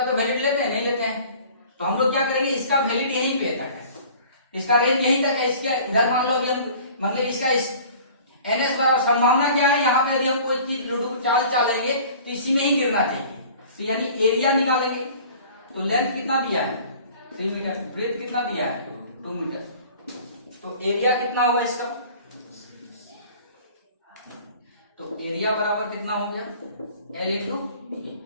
तो वैलिड लेते हैं, नहीं लेते हैं। तो हम लोग क्या करेंगे, इसका वैलिड यहीं पे तक है, इसका रेंज यहीं तक है, इसके इधर मान लो अभी हम मतलब इसका इस एनएस बराबर संभावना क्या है, यहाँ पे यदि हम कोई चीज लूडो चाल चालेंगे तो इसी में ही गिरना चाहिए। तो यानी एरिया निकालेंगे। तो लेंथ कितना दिया है 3 मीटर, ब्रेथ कितना दिया है 2 मीटर, तो एरिया कितना होगा इसका, तो एरिया बराबर कितना हो गया L इंटू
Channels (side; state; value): both; inverted; correlation -0.47